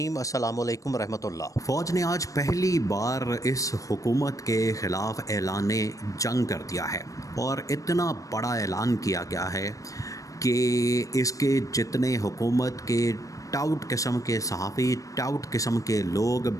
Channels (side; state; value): right; late; 0.16 ms